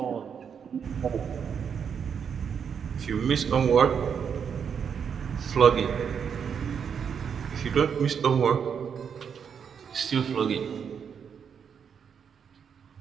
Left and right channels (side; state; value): left; quieter; 7.2 dB